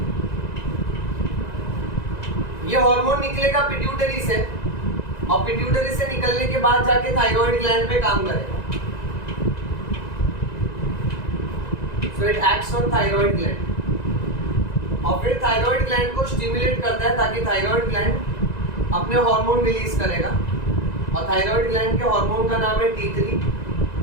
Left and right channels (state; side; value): late; right; 1.9 ms